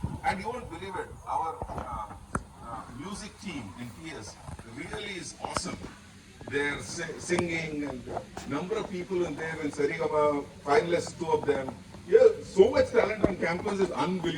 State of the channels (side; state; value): both; identical; correlation 1.00